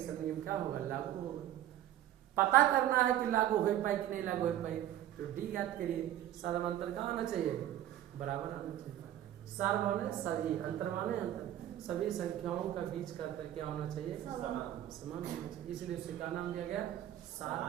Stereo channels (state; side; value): quieter; left; 12.4 dB